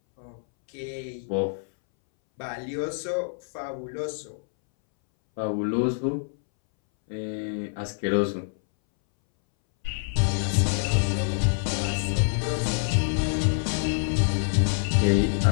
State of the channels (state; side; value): silent; right; 61 dB below the other